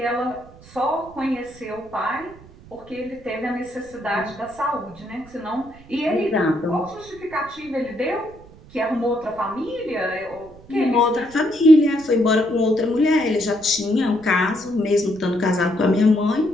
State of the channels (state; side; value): noise; right; rumble, 22 dB below the sound